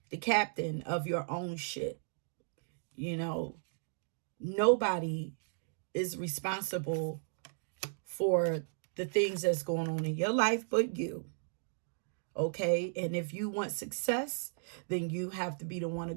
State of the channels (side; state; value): left; silent; digital silence